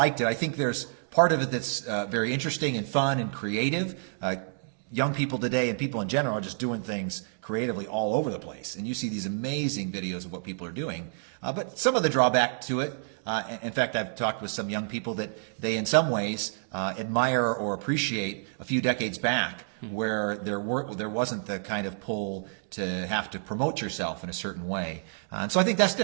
it. I think there's part of it that's very interesting and fun and creative. Young people today and people in general are just doing things creatively all over the place. And you see these amazing videos of what people are doing. But some of the drawback to it, in fact, I've talked with some young people that they in some ways admire or appreciate a few decades back, where there wasn't the kind of pull to have to promote yourself in a certain way. And so I think that's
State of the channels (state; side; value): silent; left; digital silence